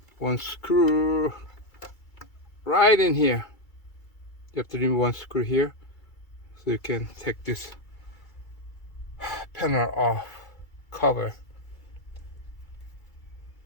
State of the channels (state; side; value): late; right; 2.3 ms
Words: one screw right in here. You have to remove one screw here so you can take this panel off cover.